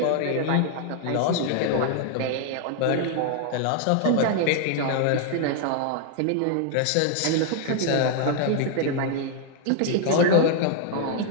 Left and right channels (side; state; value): both; different; correlation 0.00